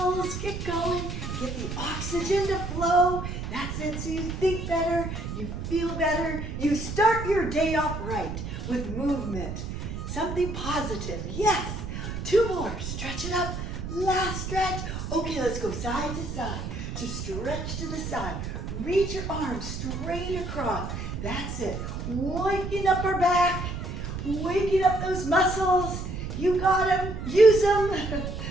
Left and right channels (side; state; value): right; noise; rumble, 6 dB below the sound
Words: Get going. Get the oxygen to flow. That's it. So you think better. You feel better. You start your day off right with movement. Something positive. Yes. 2 more. Stretch it up. Last stretch. Okay, let's go side to side. Just stretch to the side. Reach your arms straight across. That's it. Waking up our back. Waking up those muscles. You got them. Use them.